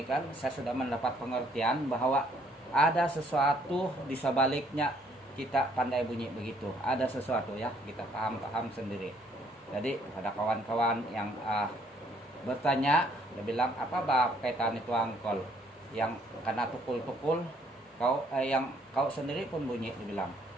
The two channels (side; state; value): both; normal; correlation 0.65